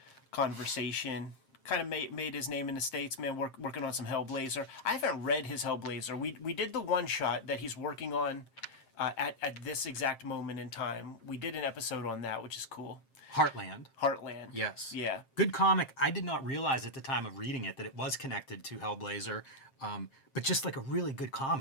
conversation. Kind of made his name in the States, man, working on some Hellblazer. I haven't read his Hellblazer. We did the one-shot that he's working on at this exact moment in time. We did an episode on that, which is cool. Heartland. Heartland. Yes. Yeah. Good comic. I did not realize at the time of reading it that it was connected to Hellblazer, but just like a really good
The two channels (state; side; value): late; right; 7.5 ms